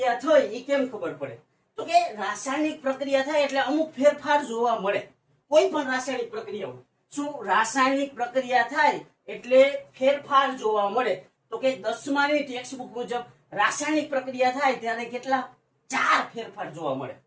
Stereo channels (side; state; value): both; identical; correlation 1.00